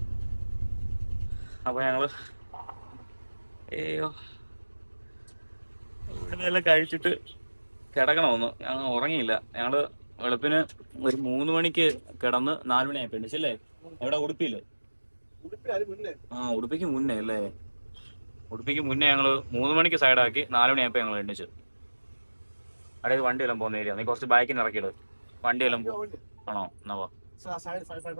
അപ്പൊ ഞങ്ങള് ഇവിടെ എല്ലാം കഴിച്ചിട്ട് കിടക്കണമെന്ന് ഞങ്ങൾ ഉറങ്ങിയില്ല. ഞങ്ങള് വെളുപ്പിന് ഒരു 3 മണിക്ക് കിടന്ന് 4 മണിയായപ്പോ എണ്ണിച്ചല്ലേ. എവിടെ? ഉടുപ്പിയില്. ഉടുപ്പിക്ക് മുന്നേ അല്ലേ? ഉടുപ്പിക്ക് മുന്നേ ഞങ്ങള് 3 മണിക്ക് സൈഡാക്കി 4 മണിയായപ്പോ ഞങ്ങൾ എണ്ണിച്ചു. അതായത് വണ്ടിയെല്ലാം പോകുന്ന ഏരിയ. നീ കുറച്ച് ബാക്കിന് ഇറക്കിയിട്. വണ്ടിയെല്ലാം ആണോ? എന്നാ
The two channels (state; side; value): inverted; both; correlation -1.00